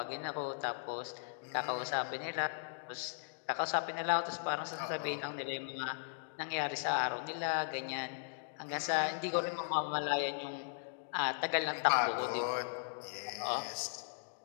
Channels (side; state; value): right; silent; digital silence